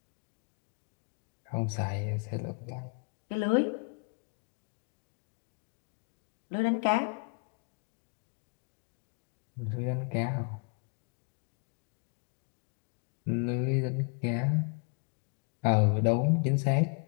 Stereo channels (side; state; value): right; quieter; 34.3 dB